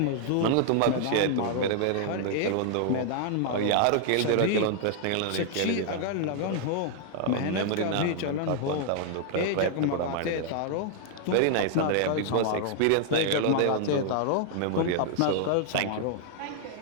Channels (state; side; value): different; both; correlation 0.00